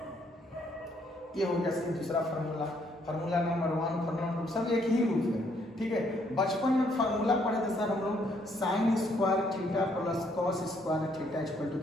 ये हो गया सर दूसरा formula, formula number 1, formula number सब एक ही रूप है, ठीक है। बचपन में फार्मूला पढ़े थे सर हम लोग sine square theta plus cos square theta equal to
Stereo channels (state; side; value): normal; both; correlation 0.69